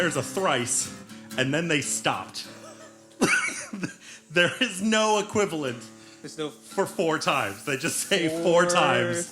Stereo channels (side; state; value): both; identical; correlation 1.00